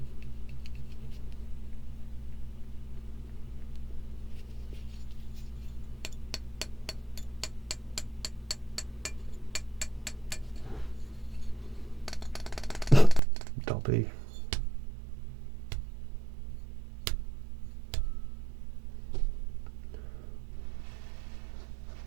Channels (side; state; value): left; drops out; at 13.2 s